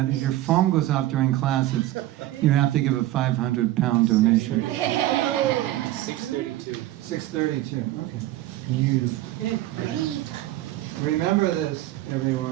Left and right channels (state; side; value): quieter; left; 15.3 dB